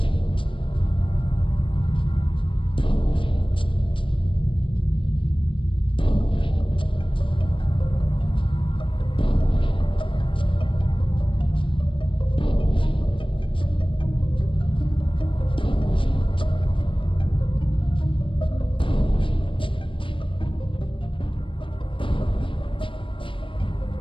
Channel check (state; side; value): late; right; 0.25 ms